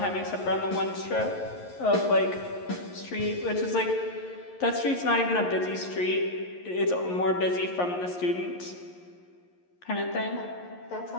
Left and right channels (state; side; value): late; right; 11 ms